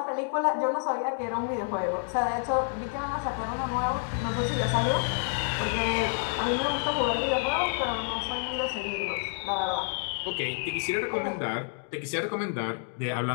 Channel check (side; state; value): right; silent; 59 dB below the other